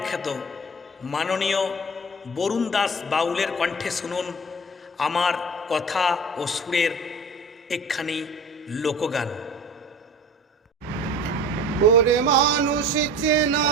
খ্যাত মাননীয় বরুণ দাস বাউলের কণ্ঠে শুনুন আমার কথা ও সুরের একখানি লোকগান। ওরে মানুষ চেনা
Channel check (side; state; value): both; normal; correlation 0.38